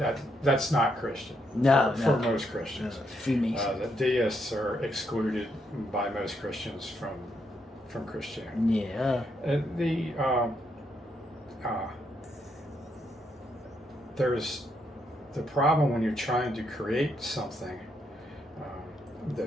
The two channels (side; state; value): both; normal; correlation 0.77